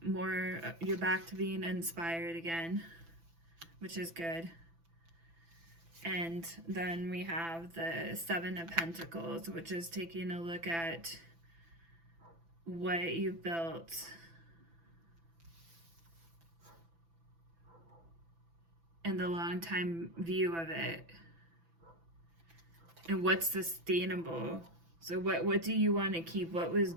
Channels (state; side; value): late; left; 6.0 ms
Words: more, you're back to being inspired again, which is good. And then we have the Seven of Pentacles, which is taking a look at what you built and the long time view of it, and what's sustainable. So what do you want to keep? What was